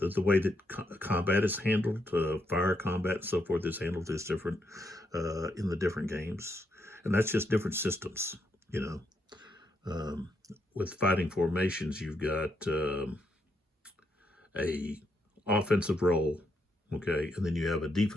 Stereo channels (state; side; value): normal; both; correlation 0.78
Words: way that combat is handled, fire combat and so forth is handled is different in the different games, and that's just different systems. With Fighting Formations, you've got a offensive role, okay, and then you have a